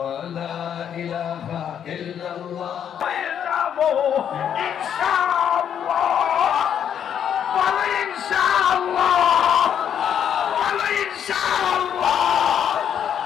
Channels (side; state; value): right; quieter; 8.9 dB